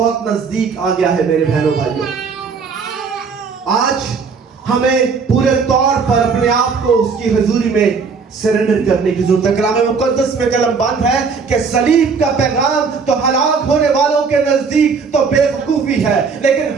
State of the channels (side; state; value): left; quieter; 5.2 dB